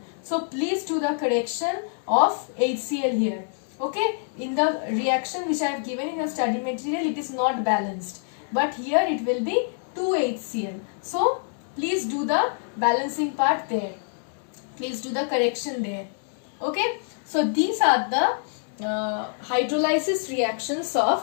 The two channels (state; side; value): silent; right; digital silence